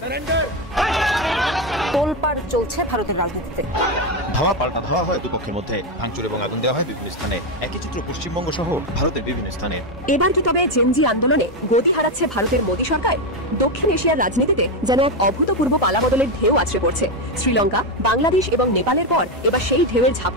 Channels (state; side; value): normal; both; correlation 0.09